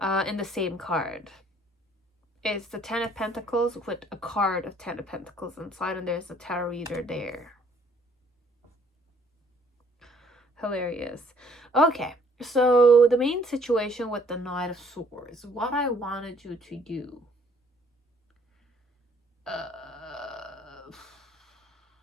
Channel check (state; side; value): normal; both; correlation 0.61